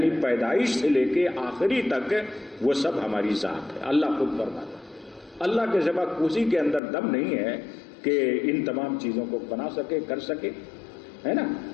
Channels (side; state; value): right; drops out; at 6.8 s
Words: پیدائش سے لے کے آخری تک وہ سب ہماری ذات ہے۔ اللہ خود فرماتا ہے، اللہ کے سوا کسی کے اندر دم نہیں ہے کہ ان تمام چیزوں کو بنا سکے، کر سکے، ہے نا۔